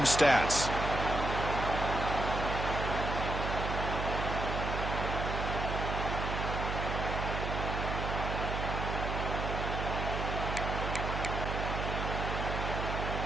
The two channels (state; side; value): noise; right; hum, 2 dB below the sound